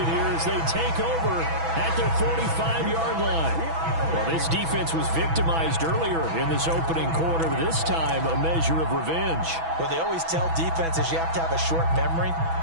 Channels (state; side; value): late; left; 6.1 ms